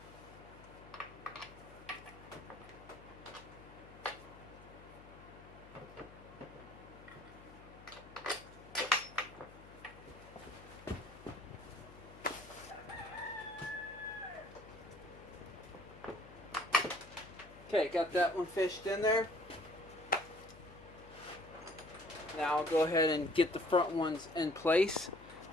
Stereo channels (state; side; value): noise; left; hum, 19 dB below the sound